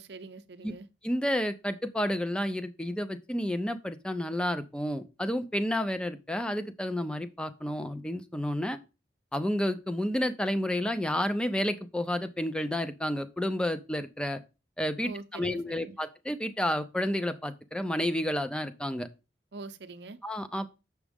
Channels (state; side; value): normal; both; correlation 0.87